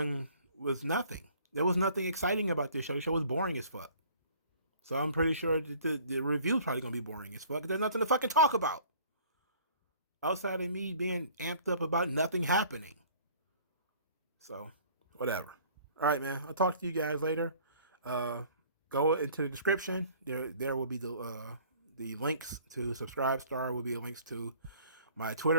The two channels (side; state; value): both; inverted; correlation -0.52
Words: nothing. There was nothing exciting about this show. The show was boring as fuck. So I'm pretty sure the review is probably gonna be boring as fuck. There's nothing to fucking talk about outside of me being amped up about nothing happening. So, whatever. All right, man. I'll talk to you guys later. Go into the description. There will be the links to Subscribestar. Will be links to my